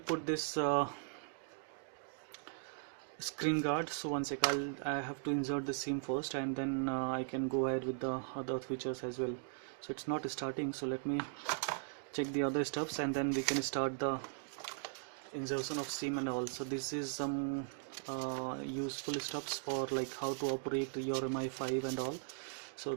this screen guard. So one sec, I have to insert the SIM first, and then I can go ahead with the other features as well. So it's not starting, so let me check the other steps and then we can start the insertion of SIM and all. So this is some useful steps for like how to operate your Mi5 and all. So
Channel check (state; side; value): silent; left; digital silence